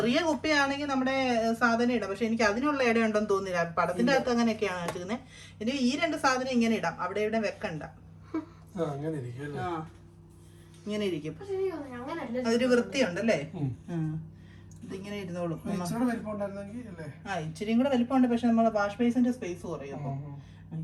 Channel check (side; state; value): both; identical; correlation 1.00